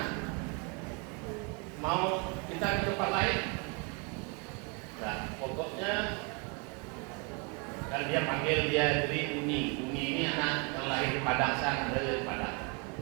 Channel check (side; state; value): left; quieter; 31.6 dB